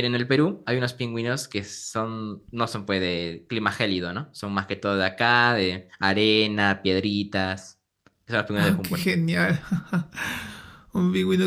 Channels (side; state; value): both; identical; correlation 1.00